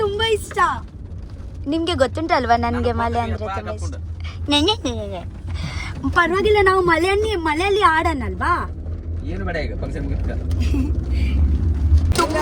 ತುಂಬಾ ಇಷ್ಟ ನಿಮ್ಗೆ ಗೊತ್ತುಂಟಲ್ವಾ ನನಗೆ ಮಳೆ ಅಂದ್ರೆ ತುಂಬಾ ಇಷ್ಟ ಪರವಾಗಿಲ್ಲ ನಾವು ಮಳೆಯಲ್ಲಿ ಆಡೋಣಲ್ವಾ ಏನು ಬೇಡ ಈಗ ಫಂಕ್ಷನ್ ಮುಗಿತ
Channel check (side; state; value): both; identical; correlation 1.00